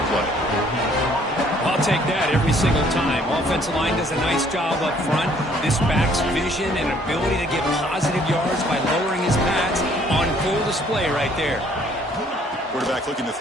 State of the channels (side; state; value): both; normal; correlation 0.61